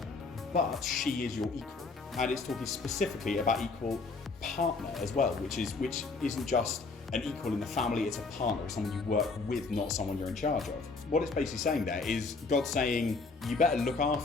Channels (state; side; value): quieter; right; 4.0 dB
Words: but she is your equal. And it's talking specifically about equal partner as well, which isn't just an equal in the family, it's a partner, it's someone you work with, not someone you're in charge of. What it's basically saying there is God saying, you better look